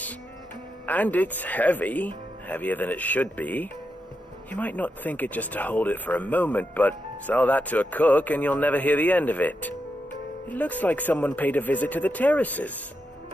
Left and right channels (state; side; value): normal; both; correlation 0.85